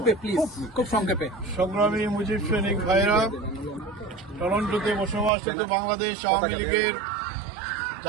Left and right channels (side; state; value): left; drops out; at 5.3 s